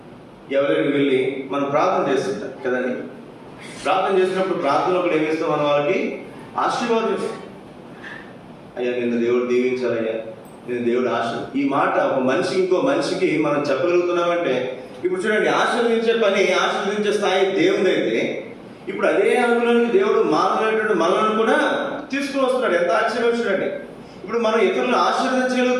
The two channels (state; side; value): identical; both; correlation 1.00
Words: ఎవరికి వెళ్ళి మనం ప్రార్థన చేస్తుంటాం కదండి. ప్రార్థన చేసినప్పుడు ప్రార్థనలో కూడా ఏమిస్తాం? మనం వాళ్ళకి ఆశీర్వాదం ఇస్తాం. అయ్యా నిన్ను దేవుడు దీవించాలయ్యా, నేను దేవుడు ఈ మాట ఒక మనిషికి ఇంకో మనిషికి మనం చెప్పగలుగుతున్నామంటే, ఇప్పుడు చూడండి, ఆశీర్వదించే పని, ఆశీర్వదించే స్థాయి దేవుడు అయితే ఇప్పుడు అదే అనుగుణానికి దేవుడు మానవులైనటువంటి మనలను కూడా తీసుకుని వస్తున్నాడు. ఎంత ఆశ్చర్యం చూడండి. ఇప్పుడు మనం ఇతరులను